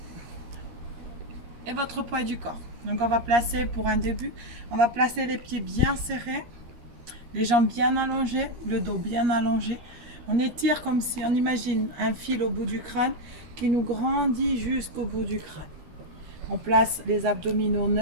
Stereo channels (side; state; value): left; late; 13 ms